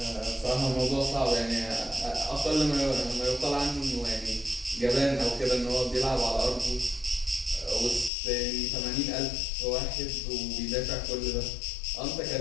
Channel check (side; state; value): right; drops out; at 8.1 s